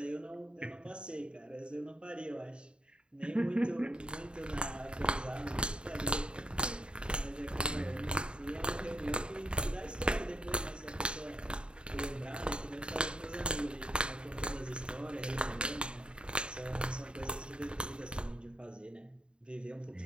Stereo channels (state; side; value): late; left; 0.052 ms